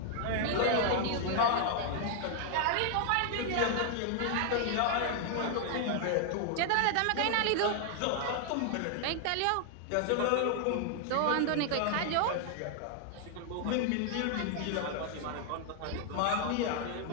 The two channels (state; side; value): different; both; correlation 0.00